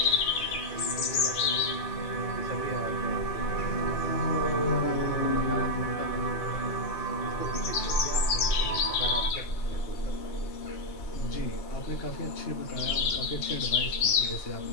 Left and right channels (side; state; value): right; late; 3.1 ms